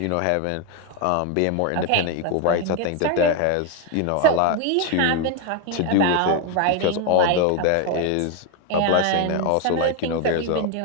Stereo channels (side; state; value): both; different; correlation 0.01